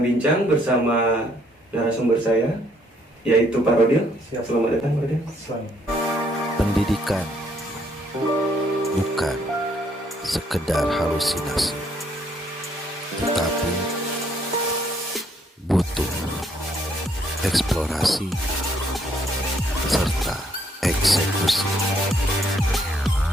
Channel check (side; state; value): both; normal; correlation 0.68